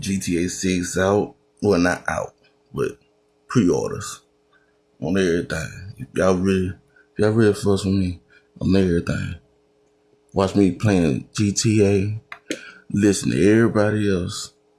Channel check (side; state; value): both; identical; correlation 1.00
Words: 6 out. Well, not out, but pre-orders on everything. If y'all really fuss with me on everything. Watch me playing GTA. Listen to everybody else.